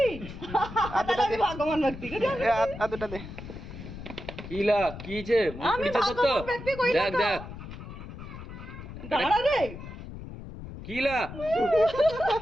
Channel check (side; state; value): left; noise; rumble, 12 dB below the sound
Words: আদুটা দে ভগবান ভক্তি করে এ আদুটা দে কিলা কি যে আমি নিচে তো ভগবান ভক্তি কইলা দেখ দেখ দাঁড়া রে কিলা